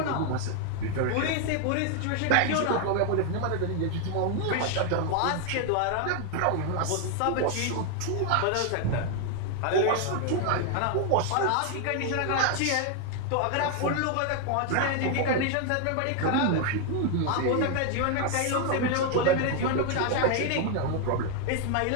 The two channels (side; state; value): both; different; correlation 0.00